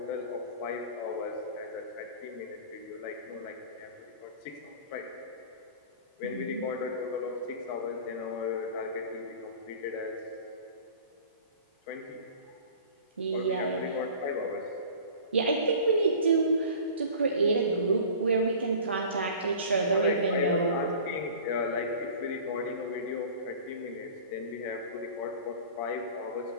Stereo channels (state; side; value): inverted; both; correlation -0.42